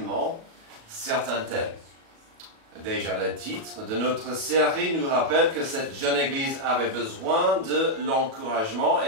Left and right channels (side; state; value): left; late; 37 ms